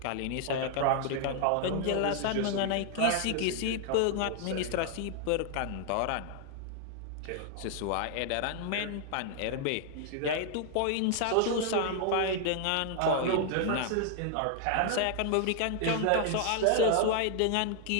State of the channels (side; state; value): both; different; correlation 0.00